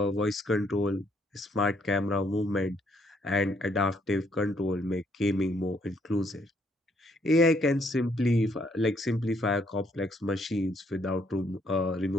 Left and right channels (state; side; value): normal; both; correlation 0.70